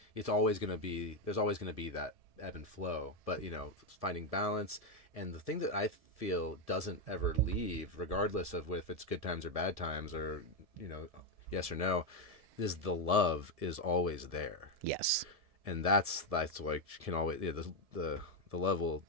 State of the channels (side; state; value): left; late; 1.7 ms